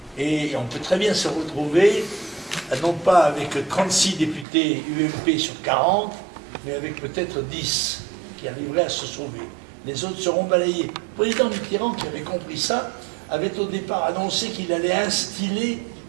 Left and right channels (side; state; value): left; drops out; at 4.5 s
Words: Et on peut très bien se retrouver, non pas avec 36 députés UMP sur 40, mais avec peut-être 10 qui arriveraient à se sauver. Les autres seront balayés. Le président Mitterrand, qui avait compris ça, avait au départ annoncé qu'il allait instiller